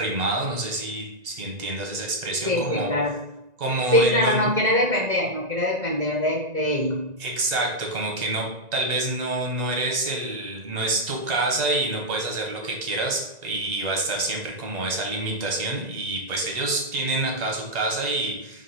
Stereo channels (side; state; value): left; late; 1.9 ms